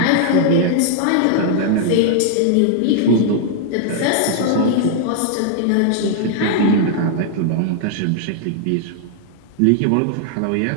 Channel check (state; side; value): different; both; correlation 0.00